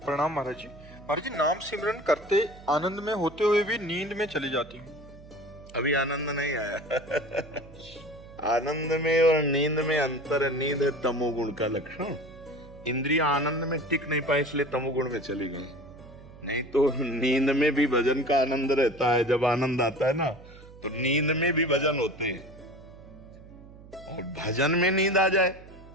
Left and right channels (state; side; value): noise; right; hum, 19 dB below the sound